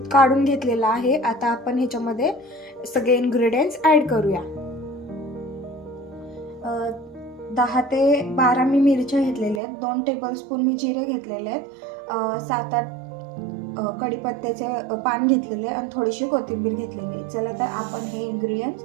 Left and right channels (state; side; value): drops out; left; at 9.6 s